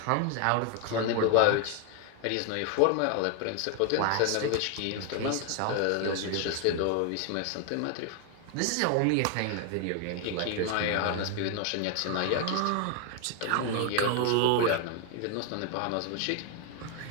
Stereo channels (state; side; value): different; both; correlation 0.01